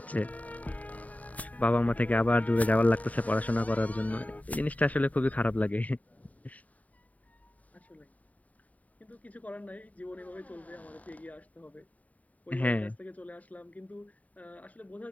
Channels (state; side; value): late; right; 0.072 ms